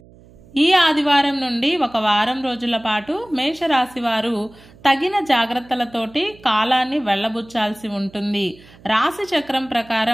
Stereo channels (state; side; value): noise; right; hum, 24 dB below the sound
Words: ఈ ఆదివారం నుండి ఒక వారం రోజుల పాటు మేషరాశి వారు తగిన జాగ్రత్తలతోటి కాలాన్ని వెళ్ళబుచ్చాల్సి ఉంటుంది. రాశి చక్రం